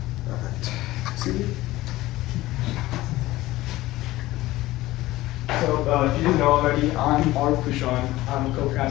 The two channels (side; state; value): right; quieter; 17.4 dB